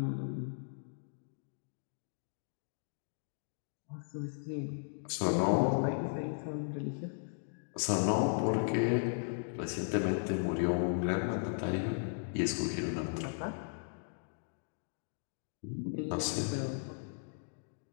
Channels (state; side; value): silent; right; digital silence